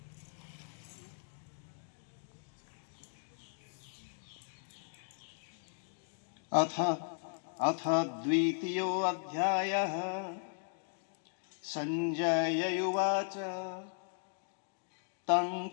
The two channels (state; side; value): silent; right; digital silence